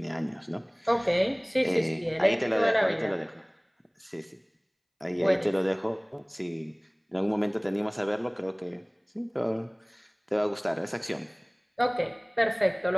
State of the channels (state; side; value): identical; both; correlation 1.00